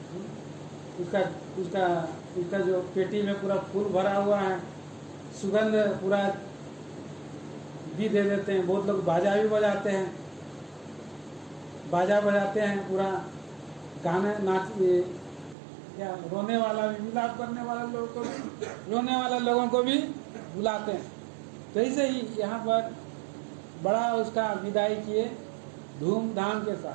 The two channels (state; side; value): drops out; left; at 15.6 s